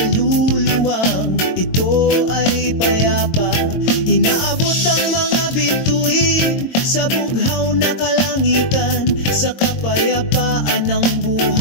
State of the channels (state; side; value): late; right; 22 ms